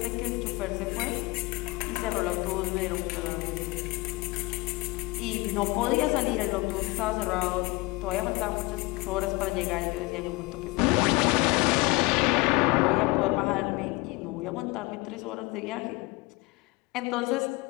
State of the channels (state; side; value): quieter; right; 24.0 dB